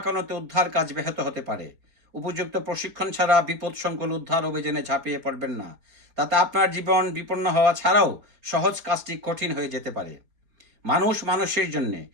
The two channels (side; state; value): left; late; 4.3 ms